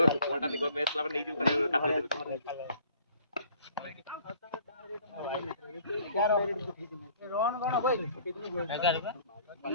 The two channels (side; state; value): both; inverted; correlation -0.55